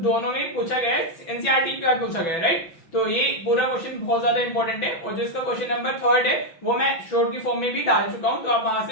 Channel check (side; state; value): right; late; 6.0 ms